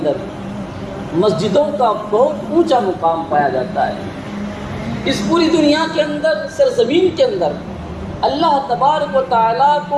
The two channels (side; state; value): both; identical; correlation 1.00